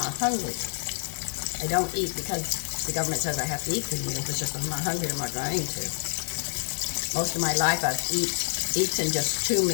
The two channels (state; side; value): silent; right; 60 dB below the other